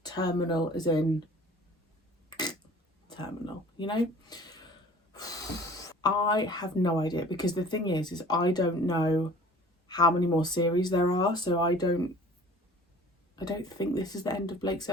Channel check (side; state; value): both; normal; correlation 0.48